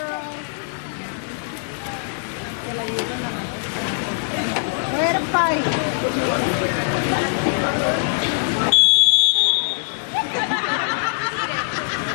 Way to fight.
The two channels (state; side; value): silent; right; digital silence